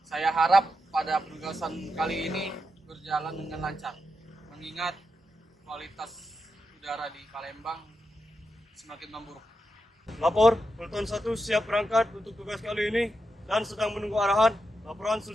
Saya harap pada penugasan kali ini berjalan dengan lancar, mengingat kualitas udara di Palembang semakin memburuk. Lapor, Peleton 1 siap berangkat untuk tugas kali ini dan sedang menunggu arahan. Laporan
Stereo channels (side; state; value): both; normal; correlation 0.87